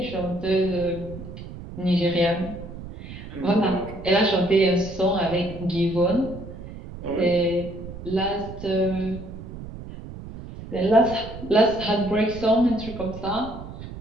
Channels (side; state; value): right; noise; rumble, 12 dB below the sound